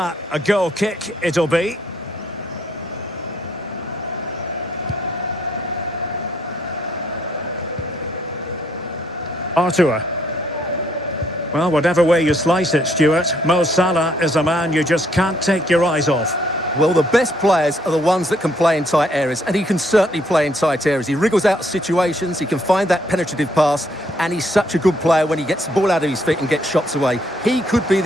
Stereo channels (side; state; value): both; normal; correlation 0.69